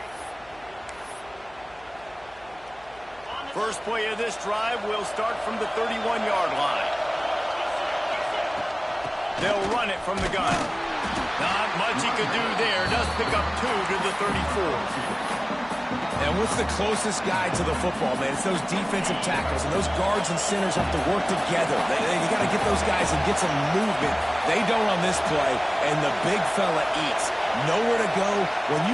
First play of this drive will start from the 31-yard line. They'll run it from the gun. Not much he could do there. Does pick up 2 to the 34. And what's the closest guy to the football, man? It's those defensive tackles, and those guards and centers have to work together. You got to get those guys and get some movement. They don't on this play, and the big fella eats. Nowhere to go. When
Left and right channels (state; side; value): noise; left; hum, 26 dB below the sound